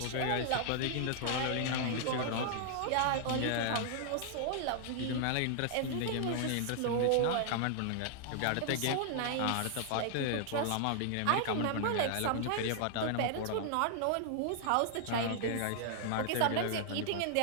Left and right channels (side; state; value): both; different; correlation 0.00